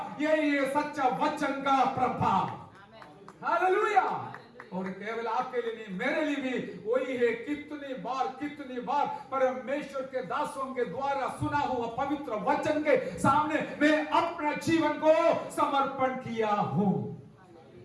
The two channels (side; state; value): both; identical; correlation 1.00